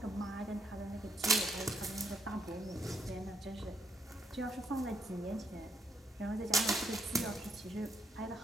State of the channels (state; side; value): normal; both; correlation 0.74